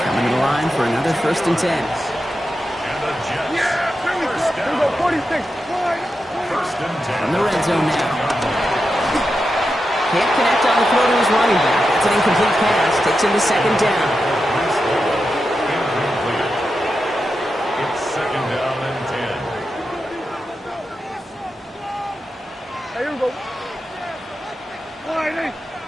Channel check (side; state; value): both; normal; correlation 0.89